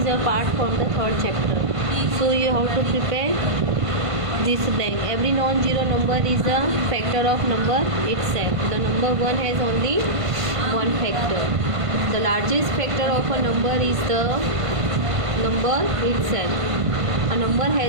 a part from the third chapter. So you have to prepare this blank. Every non-zero number is a factor of number itself. The number 1 has only one factor. The largest factor of a number is the number itself. A number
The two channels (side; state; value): left; late; 1.5 ms